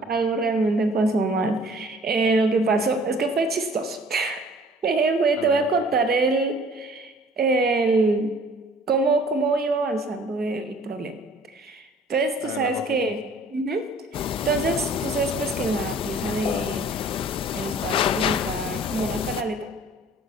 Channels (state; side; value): normal; both; correlation 0.52